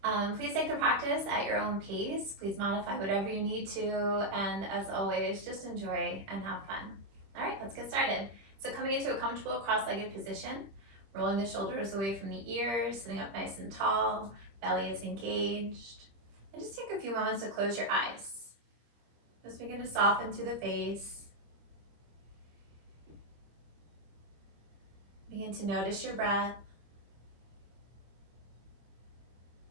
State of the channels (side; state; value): left; late; 25 ms